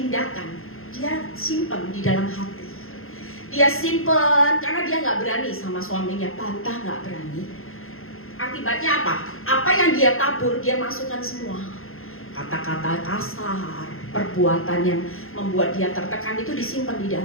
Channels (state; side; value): late; right; 0.61 ms